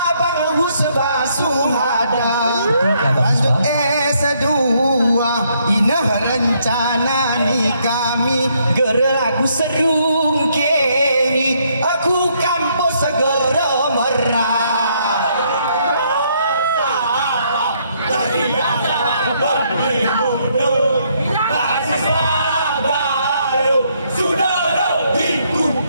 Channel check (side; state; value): both; inverted; correlation -0.71